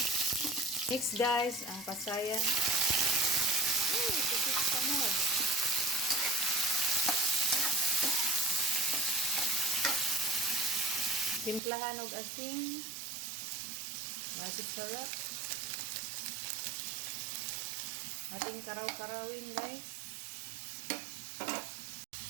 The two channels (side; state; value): left; drops out; at 11.6 s